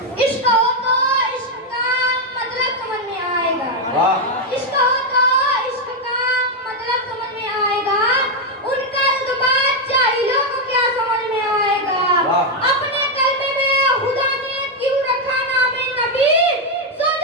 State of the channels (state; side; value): normal; both; correlation 0.02